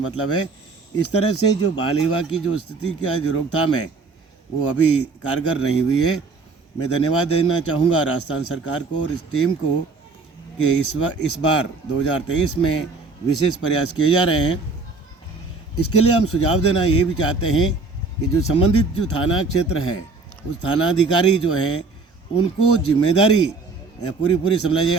है। इस तरह से जो बाल विवाह की जो स्थिति का जो रोकथाम है वो अभी कारगर नहीं हुई है। मैं धन्यवाद देना चाहूँगा राजस्थान सरकार को और इस टीम को कि इस बार 2023 में विशेष प्रयास किए जा रहे हैं। इसके लिए हम सुझाव देना ये भी चाहते हैं कि जो संबंधित जो थाना क्षेत्र है उस थानाधिकारी जो है उनको जिम्मेदारी पूरी समझ लीजिए।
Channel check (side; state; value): left; quieter; 4.0 dB